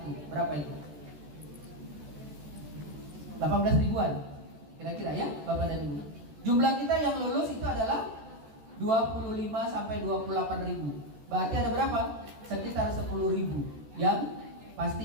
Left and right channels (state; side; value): late; left; 14 ms